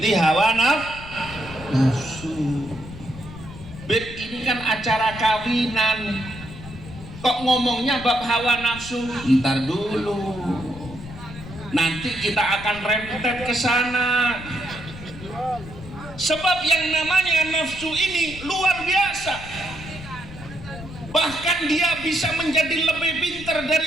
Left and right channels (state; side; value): noise; left; rumble, 14 dB below the sound